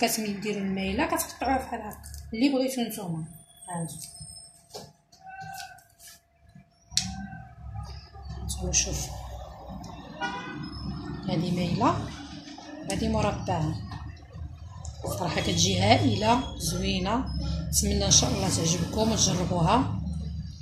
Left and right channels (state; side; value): identical; both; correlation 1.00